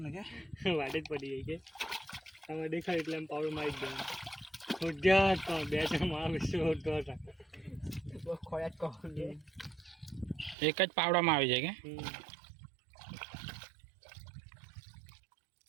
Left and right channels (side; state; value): left; drops out; at 10.6 s